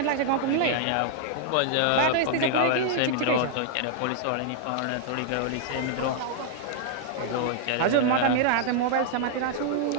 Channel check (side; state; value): both; different; correlation -0.01